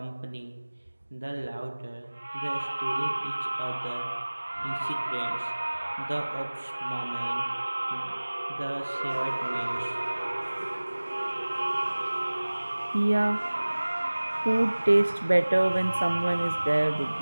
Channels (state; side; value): inverted; both; correlation -1.00